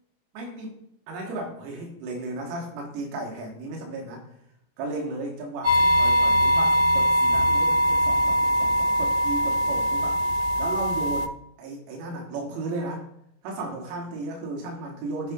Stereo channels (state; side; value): late; left; 17 ms